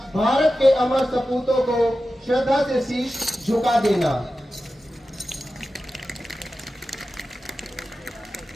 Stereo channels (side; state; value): both; normal; correlation 0.93